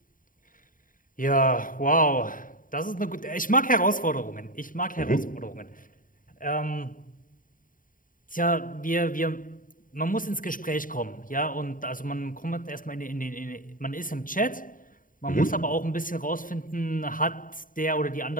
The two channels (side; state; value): right; late; 0.39 ms